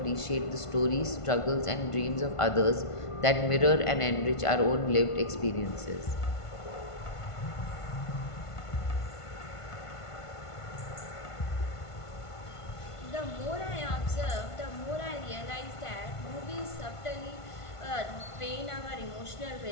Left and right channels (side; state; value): right; late; 1.5 ms